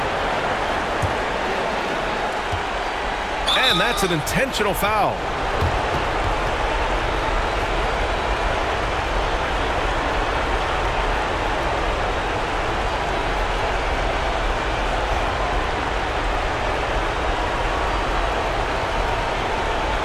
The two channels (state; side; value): identical; both; correlation 1.00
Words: And that's an intentional foul.